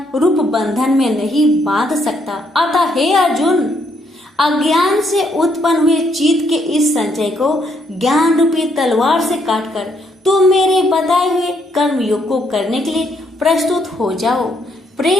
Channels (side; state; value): both; normal; correlation 0.73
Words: रूप बंधन में नहीं बांध सकता। अतः हे अर्जुन, अज्ञान से उत्पन्न हुए चित्त के इस संचय को ज्ञान रूपी तलवार से काटकर तुम मेरे बताए हुए कर्म योग को करने के लिए प्रस्तुत हो जाओ।